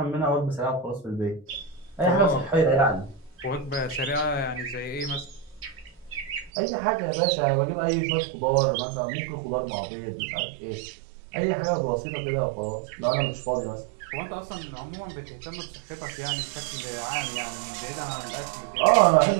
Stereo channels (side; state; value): left; drops out; at 6.5 s